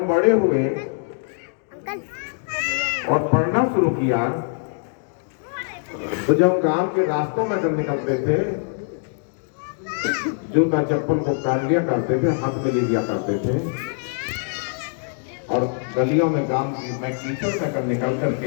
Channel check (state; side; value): silent; right; 56 dB below the other